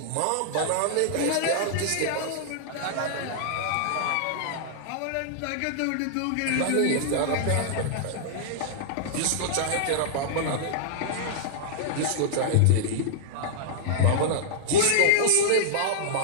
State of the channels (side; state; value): both; different; correlation -0.01